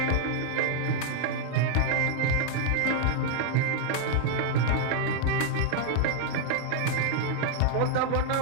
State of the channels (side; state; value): both; different; correlation 0.00